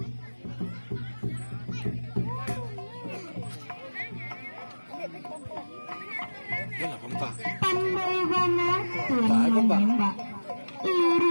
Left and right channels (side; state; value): both; inverted; correlation -1.00